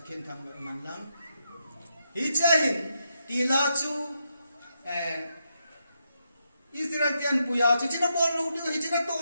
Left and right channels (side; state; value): both; inverted; correlation -0.82